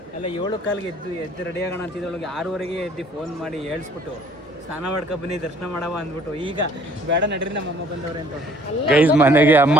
ಎಲ್ಲ 7 ಕಾಲಿಗೆ ಎದ್ದು ರೆಡಿ ಆಗೋಣ ಅಂತಿದ್ದೊಳಗೆ 6ವರೆಗೆ ಎದ್ದು ಫೋನ್ ಮಾಡಿ ಹೇಳ್ಸ್ಬಿಟ್ಟು ಸ್ನಾನ ಮಾಡ್ಕೊ ಬನ್ನಿ ದರ್ಶನ ಮಾಡವ ಅಂದ್ಬಿಟ್ಟು ಈಗ ಬೇಡ ನಡ್ರಿ ನಮ್ಮ ಅಮ್ಮ ಬಂದವ್ರೆ ಅಂತ. ಗೈಸ್ ಮನೆಗೆ ಅಮ್ಮ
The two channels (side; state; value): both; normal; correlation 0.57